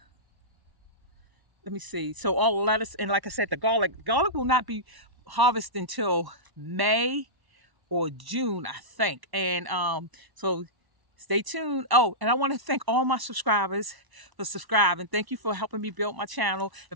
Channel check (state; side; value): late; left; 1.1 ms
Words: let me see. So all the lettuce and like I said, the garlic. Garlic will not be harvested until May or June, I think. And so stay tuned. Oh, and I want to thank all my subscribers for subscribing. Thank you for helping me build my channel.